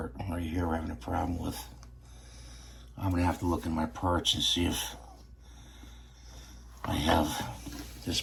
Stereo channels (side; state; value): both; identical; correlation 1.00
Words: right here we're having a problem with. I'm going to have to look in my parts and see if I have this